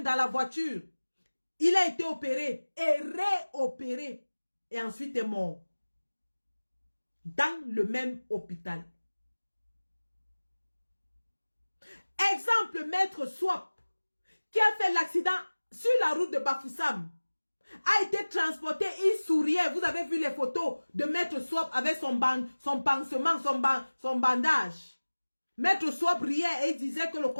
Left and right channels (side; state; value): both; inverted; correlation -1.00